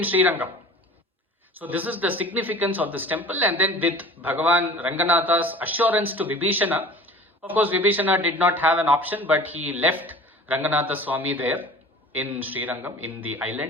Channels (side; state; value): both; normal; correlation 0.43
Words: Srirangam. So this is the significance of this temple. And then with Bhagavan Ranganatha's assurance to Vibhishana, of course Vibhishana did not have an option, but he left Ranganatha Swami there in Srirangam, in the